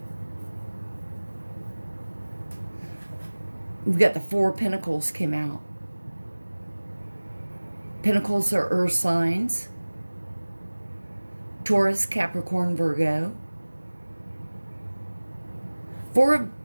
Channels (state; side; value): inverted; both; correlation -1.00